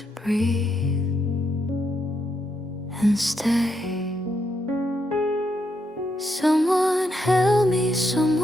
breathe and stay. Someone held me,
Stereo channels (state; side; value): normal; both; correlation 0.79